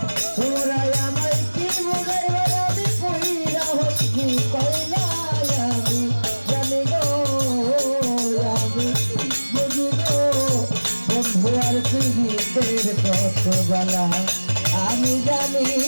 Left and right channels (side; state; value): both; inverted; correlation -1.00